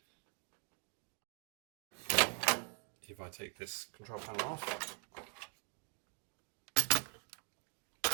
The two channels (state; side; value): quieter; left; 39.6 dB